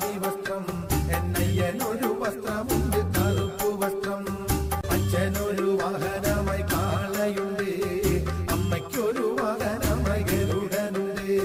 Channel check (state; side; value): identical; both; correlation 1.00